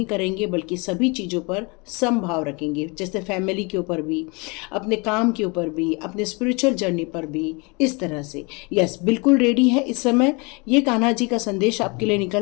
करेंगे, बल्कि सभी चीज़ों पर समभाव रखेंगे। जैसे फैमिली के ऊपर भी, अपने काम के ऊपर भी, अपने स्पिरिचुअल जर्नी पर भी, इस तरह से। यस, बिल्कुल रेडी है इस समय। ये कान्हा जी का संदेश आपके लिए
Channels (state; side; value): quieter; right; 29.4 dB